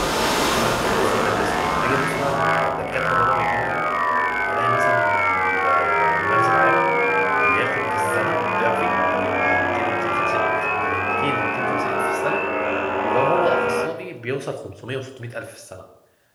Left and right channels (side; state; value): both; identical; correlation 1.00